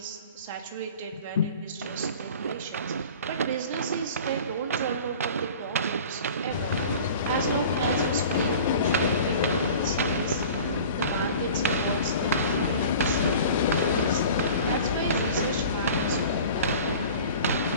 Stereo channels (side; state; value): both; inverted; correlation -0.42